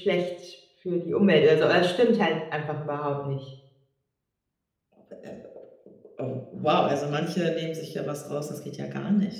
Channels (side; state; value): both; identical; correlation 1.00